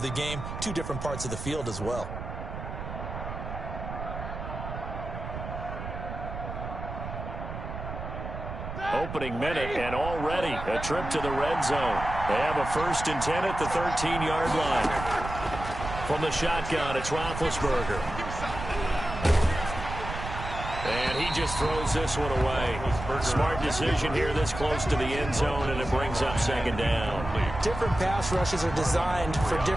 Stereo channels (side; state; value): right; noise; rumble, 8 dB below the sound